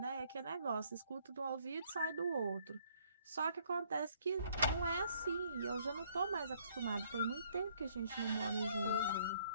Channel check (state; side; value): inverted; both; correlation -0.65